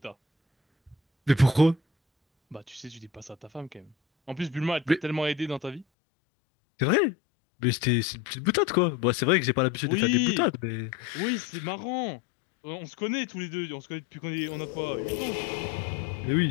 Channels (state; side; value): drops out; right; at 5.9 s